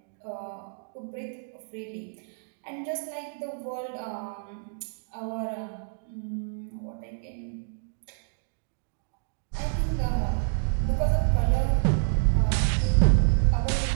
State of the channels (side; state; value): left; silent; digital silence